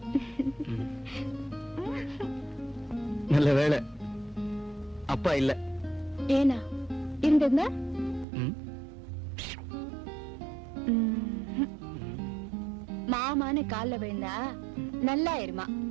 நல்ல வேளை அப்பா இல்ல. ஏனா இருந்திருந்தா ம். மாமான்னு கால்ல விழுந்தா நல்லா இருமா,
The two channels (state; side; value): drops out; left; at 8.2 s